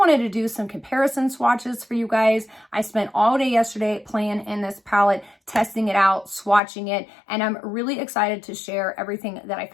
to do some comparison swatches for you guys. I spent all day yesterday playing in this palette, testing it out, swatching it, and I'm really excited to share everything that I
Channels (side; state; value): right; drops out; at 6.6 s